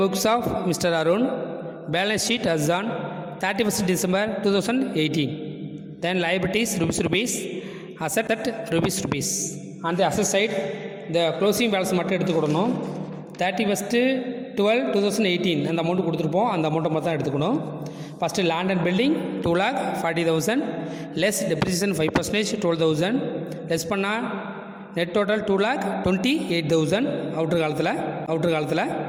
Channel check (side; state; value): both; identical; correlation 1.00